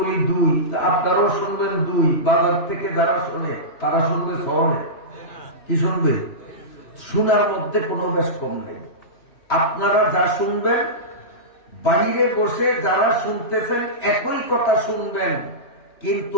দুই, আপনারাও শুনবেন দুই। বাজার থেকে যারা শোনে তারা শুনবে শহরে। কি শুনবে? শোনার মধ্যে কোনো বেশ কম নেই। আপনারা যা শুনবেন, বাইরে বসে যারা শুনতেছেন একই কথা শুনবেন,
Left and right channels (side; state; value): right; late; 3.0 ms